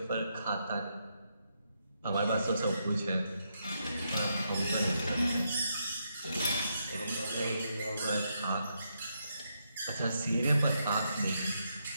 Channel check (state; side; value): inverted; both; correlation -0.80